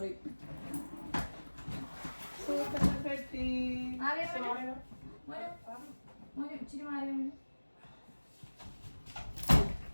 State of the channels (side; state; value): both; inverted; correlation -1.00